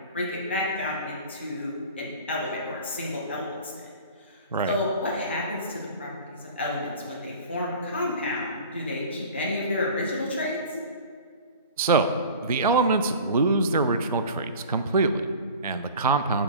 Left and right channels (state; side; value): inverted; both; correlation -0.40